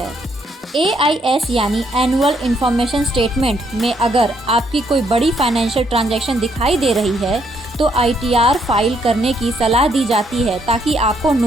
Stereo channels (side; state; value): both; normal; correlation 0.72